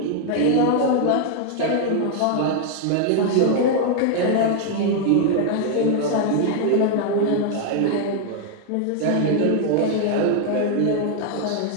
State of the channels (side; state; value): both; different; correlation 0.00